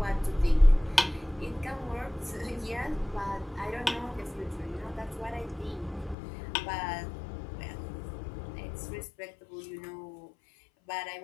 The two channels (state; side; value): drops out; right; at 6.2 s